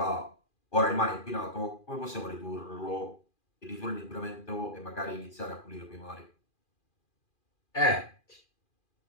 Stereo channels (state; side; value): late; right; 2.4 ms